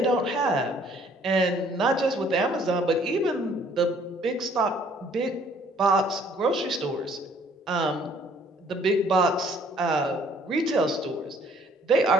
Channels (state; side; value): normal; both; correlation 0.60